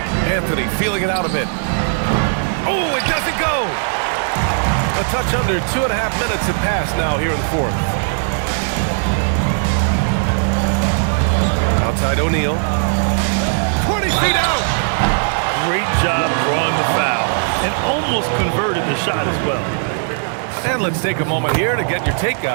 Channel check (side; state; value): left; silent; digital silence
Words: Anthony feeling it out a bit. Oh, it doesn't go. A touch under 2.5 minutes have passed now here in the fourth. Outside O'Neal. 20 feet out. Great job drawing the foul and almost converted the shot as well. And let's take a moment here to get your take,